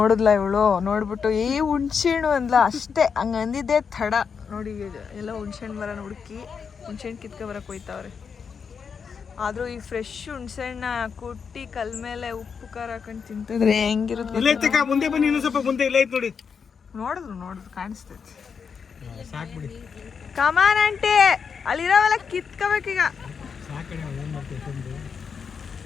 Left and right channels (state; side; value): quieter; right; 6.2 dB